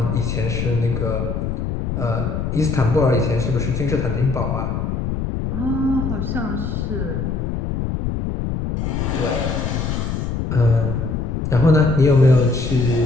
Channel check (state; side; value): noise; left; rumble, 2 dB below the sound